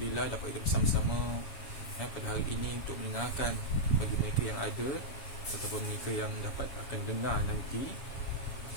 dapat kita bersama-sama pada hari ini untuk mendengarkan bagi mereka yang ada ataupun mereka yang dapat akan dengar nanti.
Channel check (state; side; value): late; right; 7.2 ms